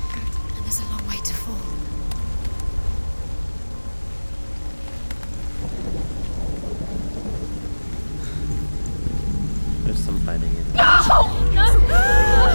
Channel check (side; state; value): both; inverted; correlation -1.00